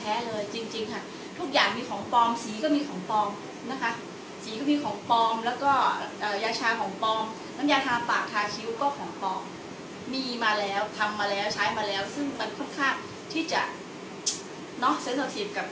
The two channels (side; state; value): both; identical; correlation 1.00